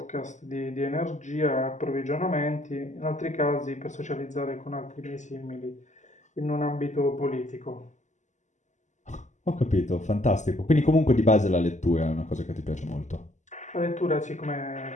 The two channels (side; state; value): right; late; 0.34 ms